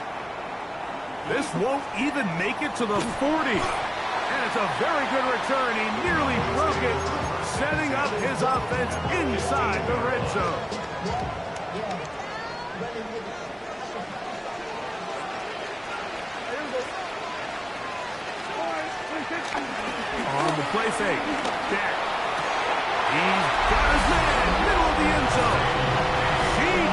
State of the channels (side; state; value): both; identical; correlation 1.00